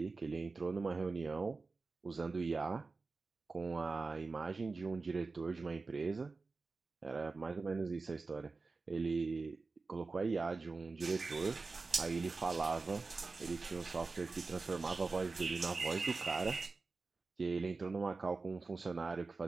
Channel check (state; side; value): quieter; left; 4.0 dB